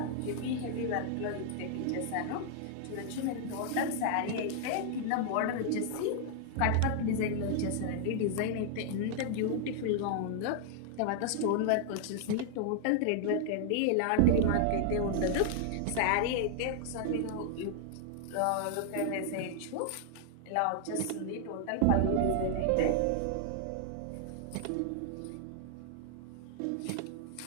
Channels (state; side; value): different; both; correlation 0.00